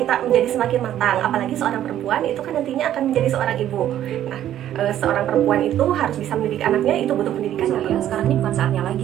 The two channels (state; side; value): quieter; left; 11.7 dB